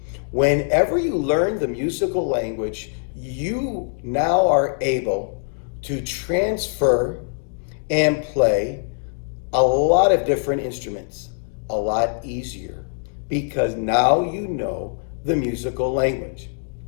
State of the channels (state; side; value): silent; right; digital silence